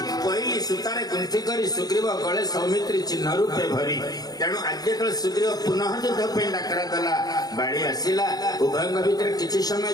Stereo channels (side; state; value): right; late; 0.19 ms